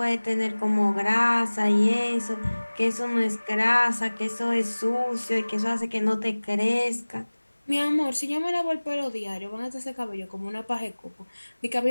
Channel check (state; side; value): inverted; both; correlation -1.00